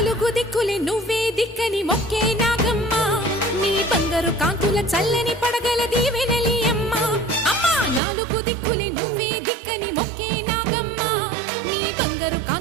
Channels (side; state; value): left; drops out; at 8.0 s